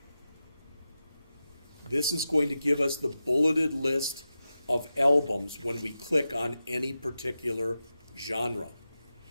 This is going to give us the bulleted list of albums when we click on any particular genre.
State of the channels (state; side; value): inverted; both; correlation -0.92